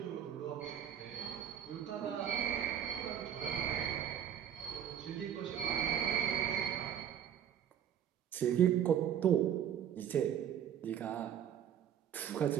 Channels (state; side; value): quieter; left; 9.5 dB